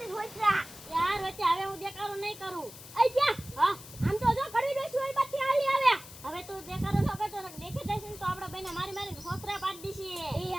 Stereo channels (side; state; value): left; noise; hiss, 16 dB below the sound